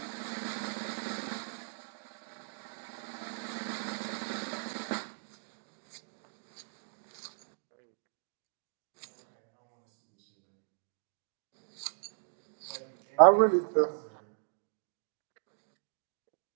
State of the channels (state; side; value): silent; left; digital silence